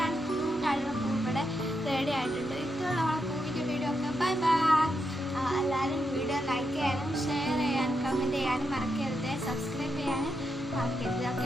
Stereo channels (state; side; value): normal; both; correlation 0.83